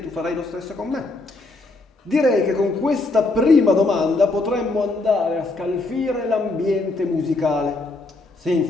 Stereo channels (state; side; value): quieter; right; 3.1 dB